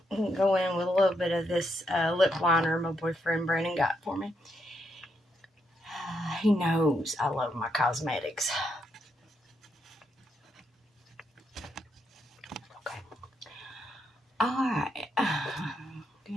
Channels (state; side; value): normal; both; correlation 0.79